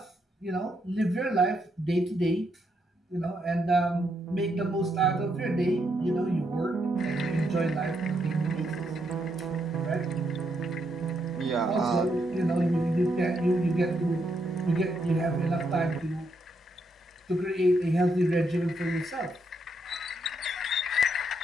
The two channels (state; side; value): normal; both; correlation 0.78